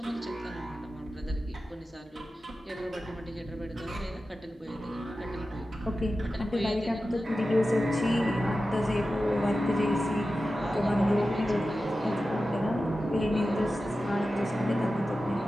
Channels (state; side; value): normal; both; correlation 0.93